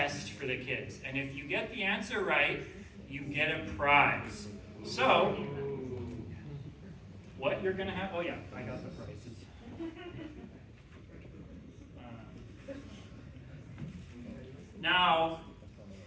for the kids. And if you get the answer right, you get a prize. So, what you're going to have, oh yeah, I got the prizes. Now,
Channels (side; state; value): both; identical; correlation 1.00